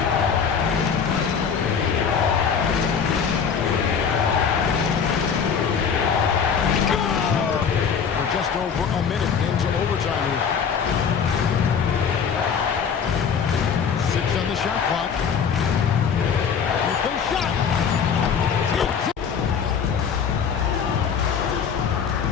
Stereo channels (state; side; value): quieter; right; 6.8 dB